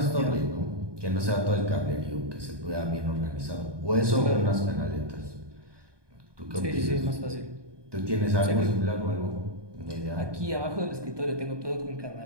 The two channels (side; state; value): left; late; 1.2 ms